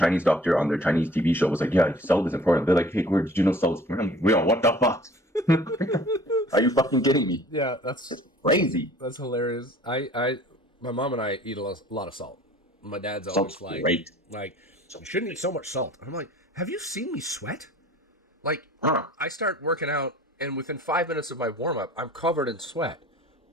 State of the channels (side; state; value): both; normal; correlation 0.50